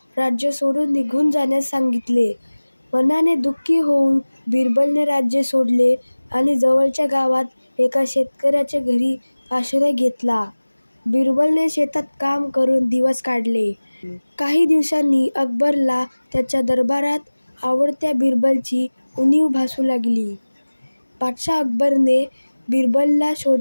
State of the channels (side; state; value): both; inverted; correlation -1.00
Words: राज्य सोडून निघून जाण्यास सांगितले. मनाने दुःखी होऊन बिरबलने राज्य सोडले आणि जवळच्या गावात एका शेतकऱ्याच्या घरी आश्रय घेतला. बिरबलने शेतात काम करून दिवस काढले. काही दिवसांनी अकबरला त्याच्या दरबारात आवडत्या बिरबलची उणीव भासू लागली. बादशाह अकबरने बिरबलला